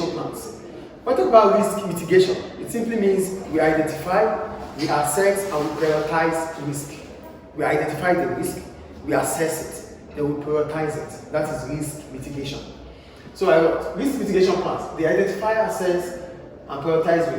plans. When we talk about risk mitigation, it simply means we identify, we assess, and we prioritize risk. We identify the risk, we assess it, then we prioritize it. That is risk mitigation. So risk mitigation plans, they identify, assess, and prioritize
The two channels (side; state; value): both; identical; correlation 1.00